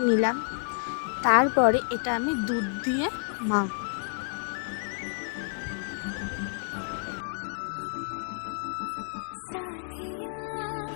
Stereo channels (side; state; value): right; silent; 58 dB below the other